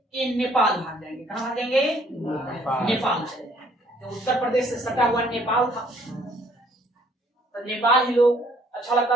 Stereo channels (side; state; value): both; normal; correlation 0.62